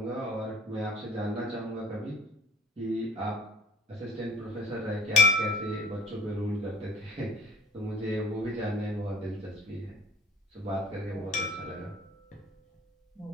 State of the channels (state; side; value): normal; both; correlation 0.51